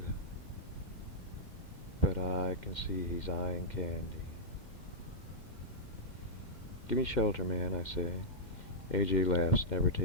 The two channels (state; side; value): late; right; 2.1 ms